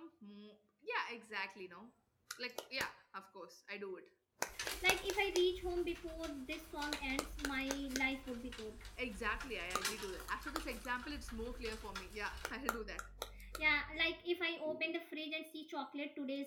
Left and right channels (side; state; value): both; identical; correlation 1.00